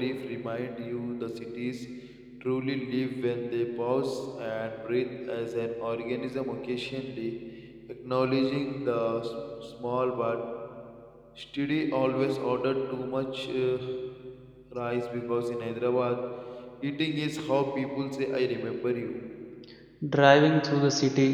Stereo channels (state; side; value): identical; both; correlation 1.00